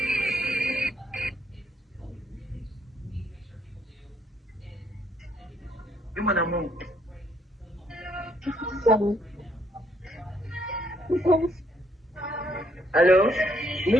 oui, mon amour. Allô?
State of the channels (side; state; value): both; normal; correlation 0.70